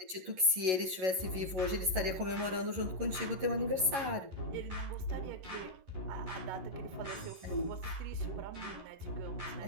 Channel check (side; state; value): left; late; 11 ms